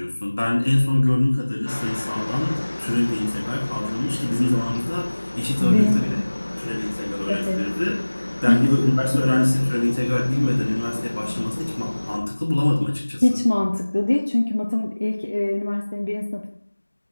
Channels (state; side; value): inverted; both; correlation -1.00